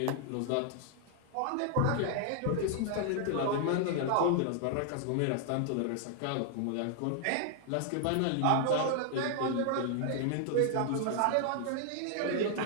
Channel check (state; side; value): different; both; correlation 0.00